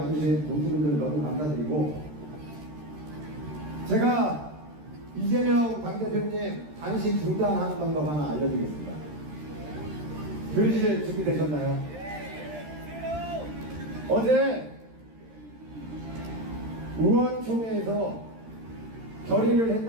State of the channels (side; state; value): left; late; 13 ms